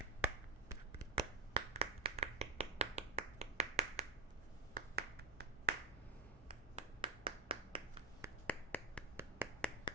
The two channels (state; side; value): quieter; left; 3.4 dB